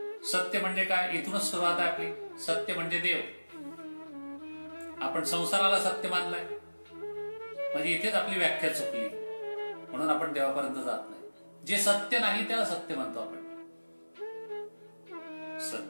सत्य म्हणजे काय? इथूनच सुरुवात आहे आपली. सत्य म्हणजे देव. आपण संसाराला सत्य मानलाय म्हणजे इथेच आपली व्याख्या चुकली, म्हणून आपण देवापर्यंत जात नाही. जे सत्य नाही त्याला सत्य म्हणतो आपण.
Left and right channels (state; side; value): inverted; both; correlation -1.00